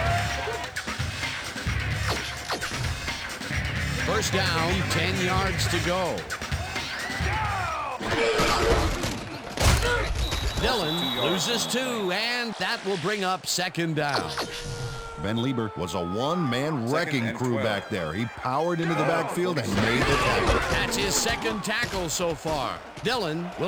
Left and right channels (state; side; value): identical; both; correlation 1.00